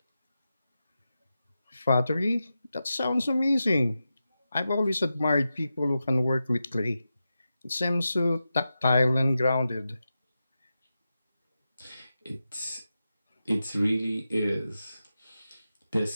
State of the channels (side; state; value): both; inverted; correlation -0.91